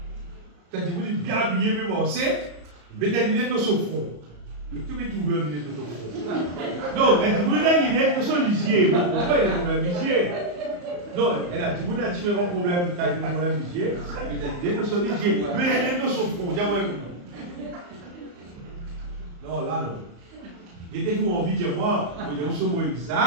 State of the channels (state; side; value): late; left; 34 ms